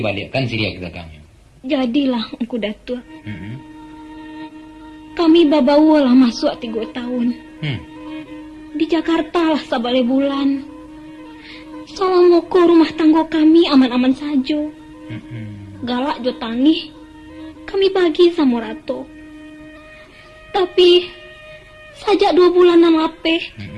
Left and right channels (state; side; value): identical; both; correlation 1.00